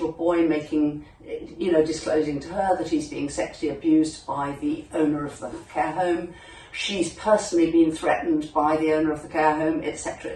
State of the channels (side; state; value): both; identical; correlation 1.00